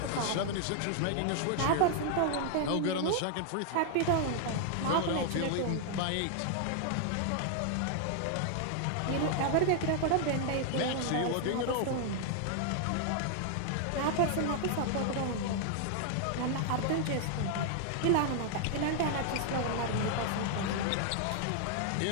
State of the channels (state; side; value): different; both; correlation 0.00